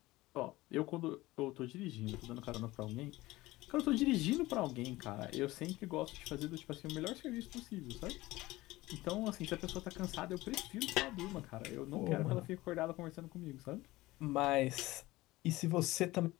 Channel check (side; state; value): right; quieter; 18.8 dB